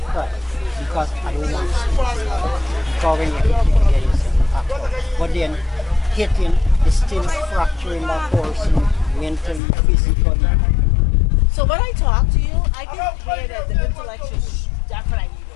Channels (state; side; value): drops out; right; at 9.6 s